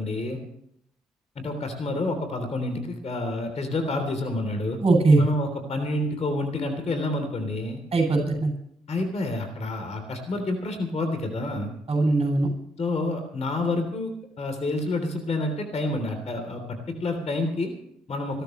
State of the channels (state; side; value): normal; both; correlation 0.74